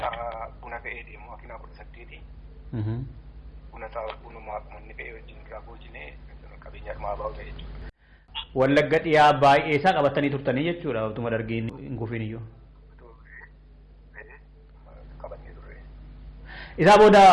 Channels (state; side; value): identical; both; correlation 1.00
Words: buna fe'ee deemu makiinaa 18. Bunuma uummanni fe'ee wajjin irraa boojine qabeenya dhumaa baa'u ta'e jechuudha. Wallagga dhiyaa baay'ee isaa qabatanii turtanii jechuudha utuma Dargiin hin kufiin iyyuu. Qabatee turre. Isaa booda